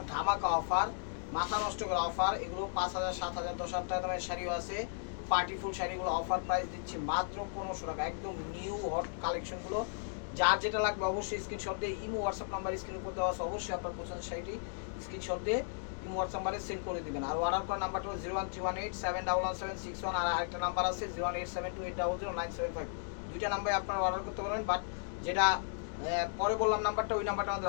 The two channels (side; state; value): right; silent; digital silence